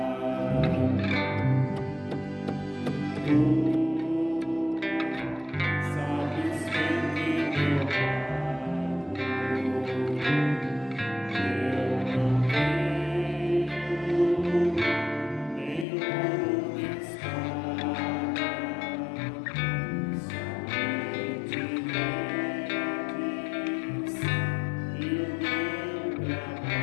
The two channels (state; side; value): drops out; right; at 15.9 s